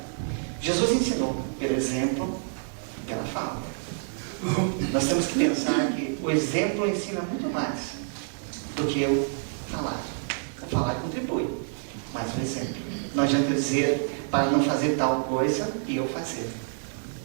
Jesus ensinou pelo exemplo e pela fala. Nós temos que pensar que o exemplo ensina muito mais do que eu falar. O falar contribui, mas o exemplo. Não adianta dizer para não fazer tal coisa e eu fazer.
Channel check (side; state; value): left; silent; 60 dB below the other